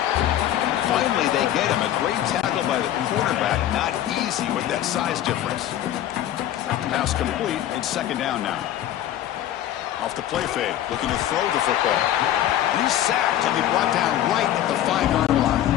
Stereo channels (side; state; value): right; quieter; 12.1 dB